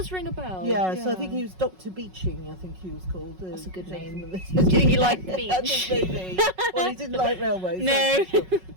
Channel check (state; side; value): late; left; 5.4 ms